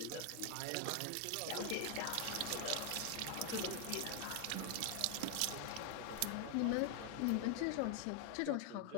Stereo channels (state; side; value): different; both; correlation 0.00